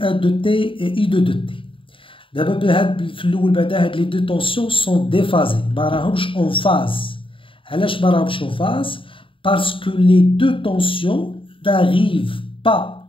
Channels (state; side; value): late; right; 0.25 ms